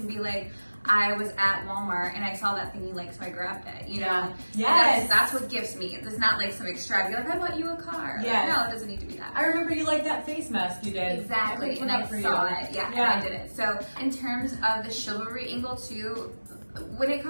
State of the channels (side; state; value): both; inverted; correlation -1.00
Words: be like, I was at Walmart and I saw that thing you like, so I grabbed it. Yeah. Yes. That's what gifts means. It's not like some extravagant, like I bought you a car. Yes. Like, no, it doesn't need to be that. I remember you liked that face mask you did. Exactly, picked and one I up for saw you. it. Yeah, and I did it. So in terms of the chivalry angle too, when it